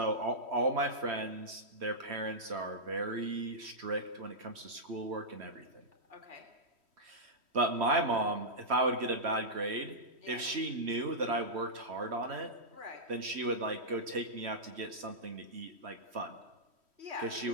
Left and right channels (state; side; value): late; left; 3.1 ms